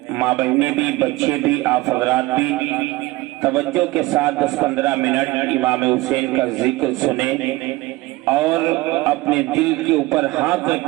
ماں بہنیں بھی، بچے بھی، آپ حضرات بھی توجہ کے ساتھ 10-15 منٹ امام حسین کا ذکر سنیں اور اپنے دل کے اوپر ہاتھ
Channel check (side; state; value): left; quieter; 20.0 dB